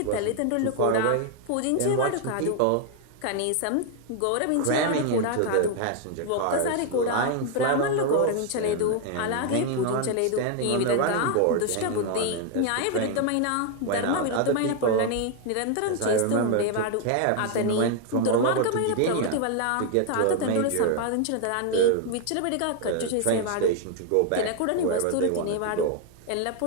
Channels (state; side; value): different; both; correlation 0.00